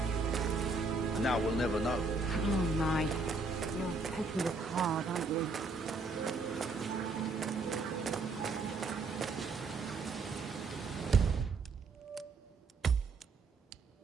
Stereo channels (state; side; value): quieter; left; 3.7 dB